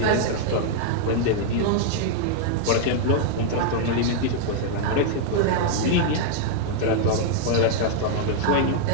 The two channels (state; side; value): different; both; correlation -0.01